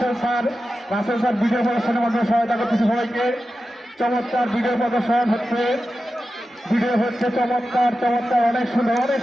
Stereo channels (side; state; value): both; normal; correlation 0.92